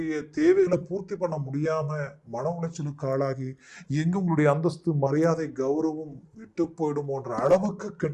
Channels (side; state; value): both; identical; correlation 1.00